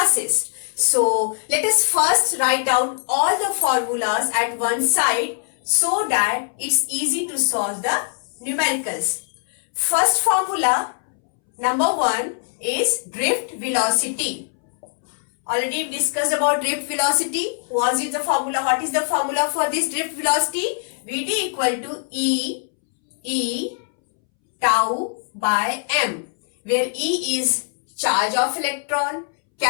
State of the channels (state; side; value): silent; right; 64 dB below the other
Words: So let us first write down all the formulas at one side so that it's easy to solve the numericals. First formula, number 1, is drift velocity. Already discussed about drift velocity. What is the formula? What is the formula for this drift velocity? Vd equal to E tau by m, where E is charge of electron,